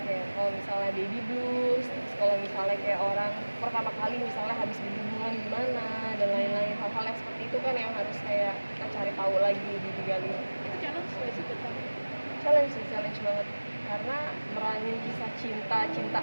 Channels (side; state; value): both; inverted; correlation -1.00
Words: kayak kalau misalnya baby blues, terus kalau misalnya kayak orang pertama kali misalnya habis berhubungan gimana, dan lain-lain. Hal-hal yang seperti itu kan yang harus kayak kita cari tahu lagi, digali. Itu challenge nggak sih buat kamu? Challenge banget. Karena meranin kisah